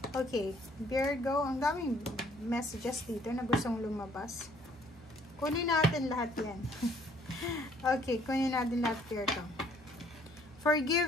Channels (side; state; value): both; normal; correlation 0.62